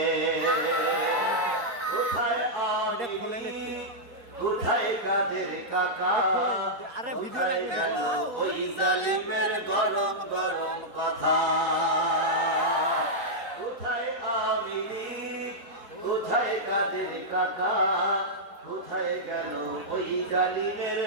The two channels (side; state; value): left; late; 4.0 ms